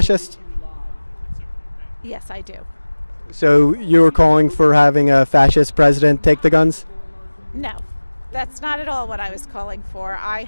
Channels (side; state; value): both; inverted; correlation -1.00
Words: Yes, I do. So you were calling for having a fascist president take the guns? No, that's not at all what I was calling for. I